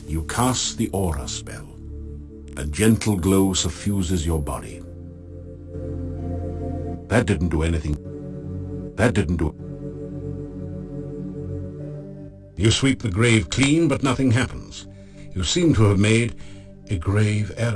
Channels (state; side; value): identical; both; correlation 1.00